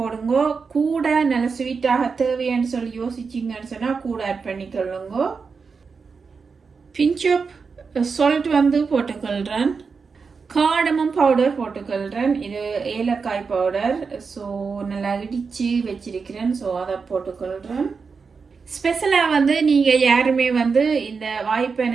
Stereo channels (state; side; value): quieter; left; 5.2 dB